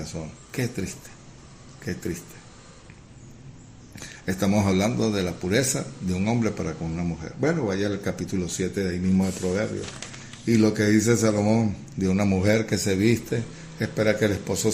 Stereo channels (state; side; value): identical; both; correlation 1.00